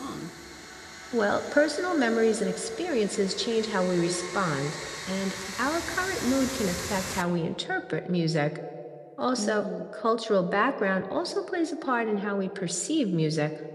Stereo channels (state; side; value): identical; both; correlation 1.00